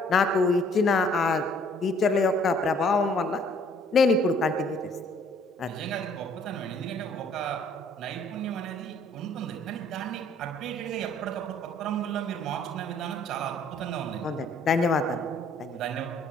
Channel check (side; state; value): both; normal; correlation 0.60